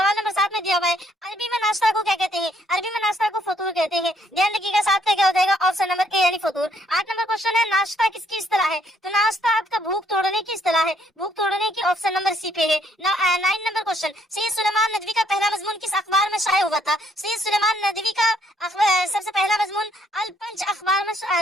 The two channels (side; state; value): both; normal; correlation 0.68